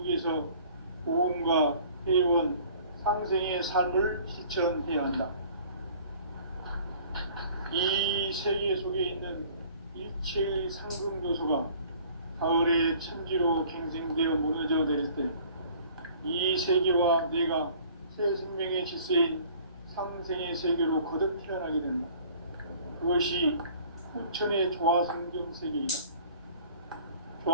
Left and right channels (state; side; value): inverted; both; correlation -0.51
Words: 위해서 고음과 회원, 상생의 삶을 실천해야 한다. 이 세계 속에 있는 일체의 상금 요소가 가을의 천지로 갱생되어 무너져 내릴 때 이 세계와 내가 새 생명의 질서인 상생의 세계로 거듭 태어나게 된다. 그것이 후천의 조화성경 세계이다.